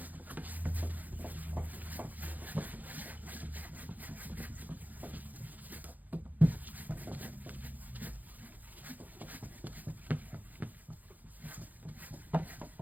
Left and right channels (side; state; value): left; late; 0.082 ms